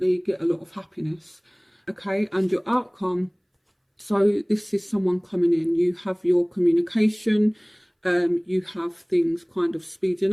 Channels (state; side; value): identical; both; correlation 1.00